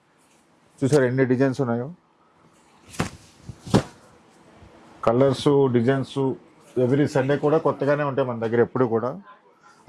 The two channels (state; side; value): identical; both; correlation 1.00